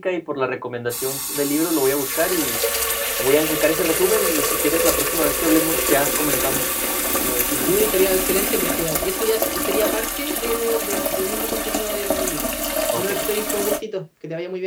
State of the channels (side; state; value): both; identical; correlation 1.00